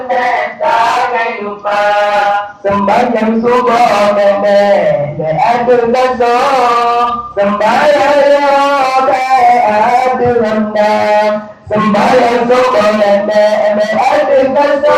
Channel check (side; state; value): both; identical; correlation 1.00